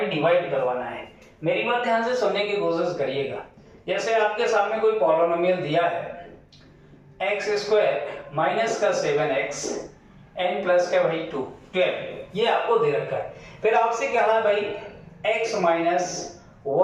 डिवाइड करवाना है। मेरी बात ध्यान से सुनने की कोशिश करिएगा। जैसे आपके सामने कोई पॉलिनोमियल दिया है x स्क्वायर माइनस का 7x n प्लस का भाई 12, ये आपको दे रखा है। फिर आपसे क्या है भाई x माइनस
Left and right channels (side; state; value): both; identical; correlation 1.00